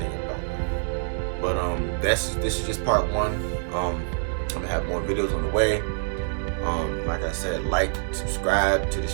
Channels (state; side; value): silent; left; digital silence